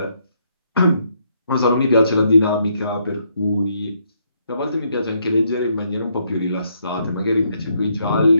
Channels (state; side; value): inverted; both; correlation -0.74